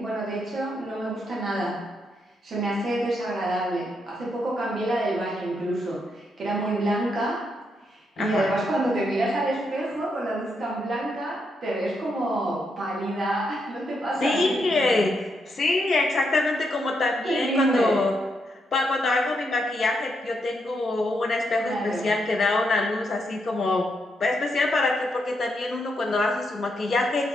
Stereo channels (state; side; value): normal; both; correlation 0.80